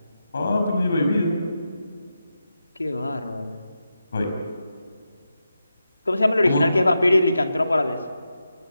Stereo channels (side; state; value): both; inverted; correlation -0.89